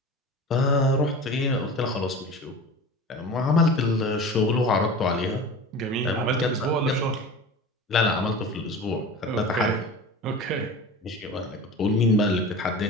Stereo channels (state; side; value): normal; both; correlation 0.34